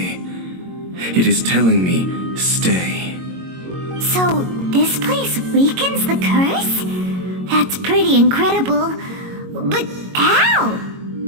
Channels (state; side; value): late; left; 22 ms